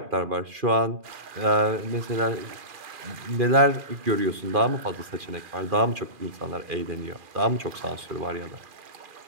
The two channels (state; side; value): late; left; 2.4 ms